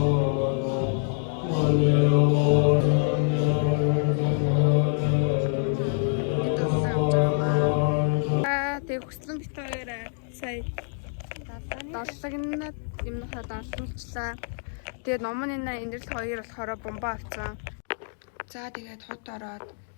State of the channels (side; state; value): right; silent; digital silence